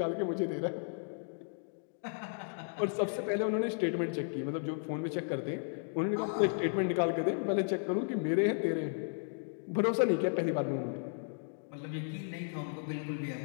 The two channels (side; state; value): right; silent; digital silence